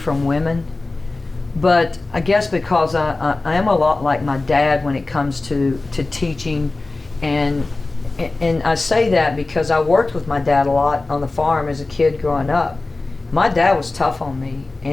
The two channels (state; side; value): quieter; right; 3.3 dB